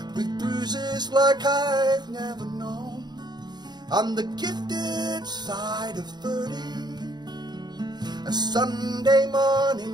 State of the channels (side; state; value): left; late; 0.20 ms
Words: with bruises like I've never known. On the gifted side of 30, a Sunday